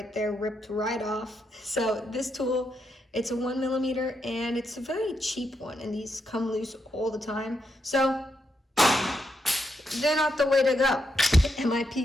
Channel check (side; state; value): both; normal; correlation 0.81